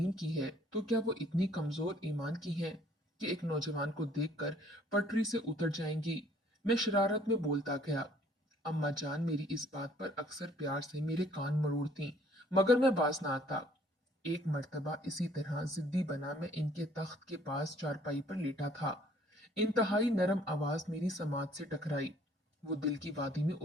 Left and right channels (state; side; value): normal; both; correlation 0.59